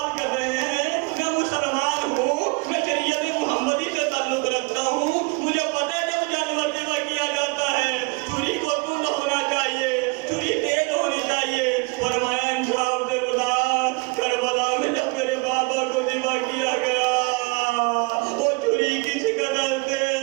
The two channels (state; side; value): quieter; left; 30.0 dB